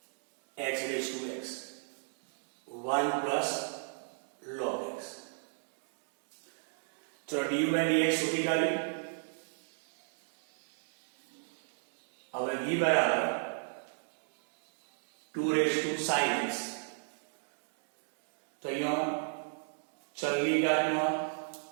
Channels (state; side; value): silent; left; digital silence